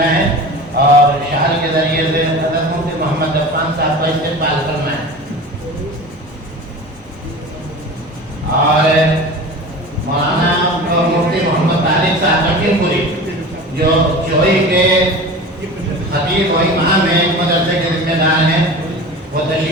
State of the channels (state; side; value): normal; both; correlation 0.34